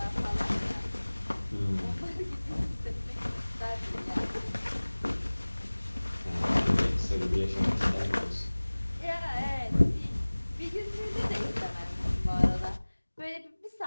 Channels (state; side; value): inverted; both; correlation -1.00